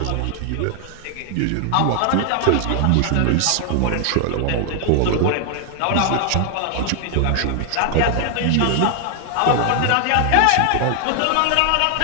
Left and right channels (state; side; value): different; both; correlation 0.00